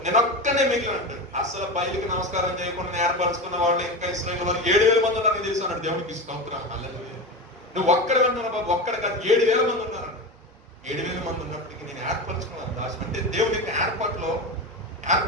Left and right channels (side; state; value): both; normal; correlation 0.23